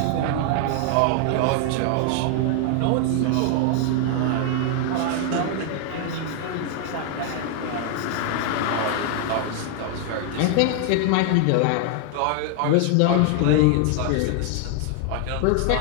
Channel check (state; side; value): different; both; correlation 0.00